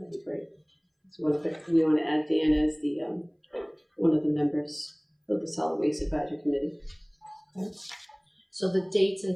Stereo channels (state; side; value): identical; both; correlation 1.00